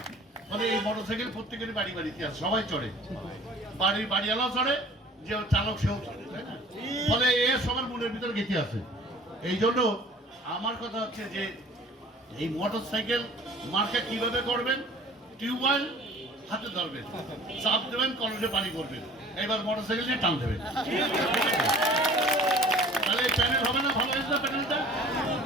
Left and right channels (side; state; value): both; normal; correlation 0.48